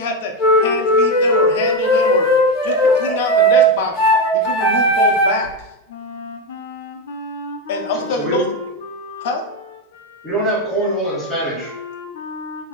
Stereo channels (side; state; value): both; normal; correlation 0.10